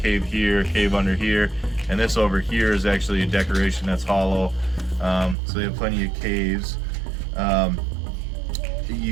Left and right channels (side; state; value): left; drops out; at 5.4 s